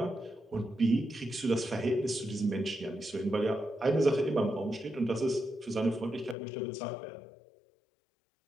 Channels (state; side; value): drops out; right; at 6.4 s